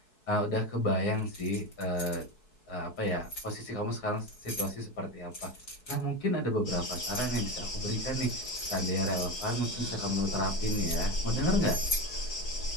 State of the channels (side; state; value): right; late; 4.7 ms